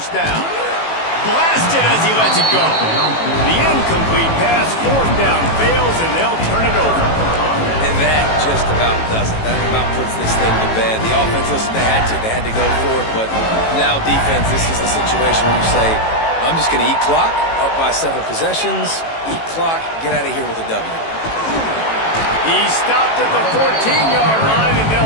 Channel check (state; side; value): late; right; 18 ms